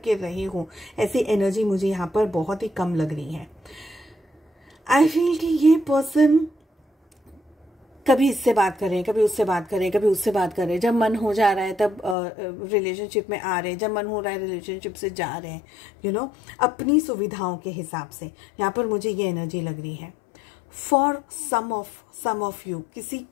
रहे हो, ऐसी एनर्जी मुझे यहाँ पर बहुत ही कम लग रही है। आई फील कि ये पर्सन कभी इससे बात करें, कभी उससे बात करें, कभी उससे बात करें, जब मन हो जा रहा है तब रिलेशनशिप में आ रहे हैं, जब मन हो रहा है रिलेशनशिप से जा रहे हैं, यू नो अपनी सुविधाओं के हिसाब से। यहाँ पर मुझे ये एनर्जी लग रही है फॉर सम ऑफ यू,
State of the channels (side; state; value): right; drops out; at 12.2 s